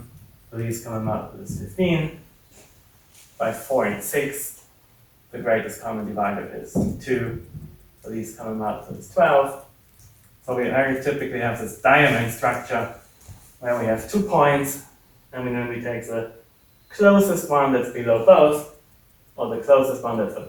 the least common multiple is 15, by 4 and 6, the greatest common divider is 2, the least common multiple is 12. So we very typically have this diamond structure where we have 2 points, and then we take the closest one that's below both, or the closest one that's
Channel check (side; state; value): both; identical; correlation 1.00